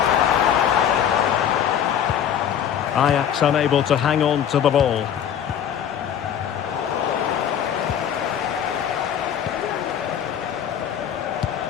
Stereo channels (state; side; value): quieter; right; 9.2 dB